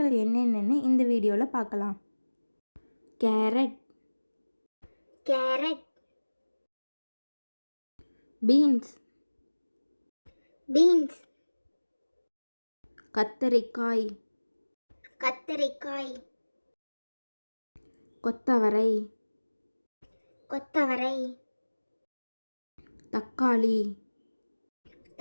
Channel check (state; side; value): inverted; both; correlation -1.00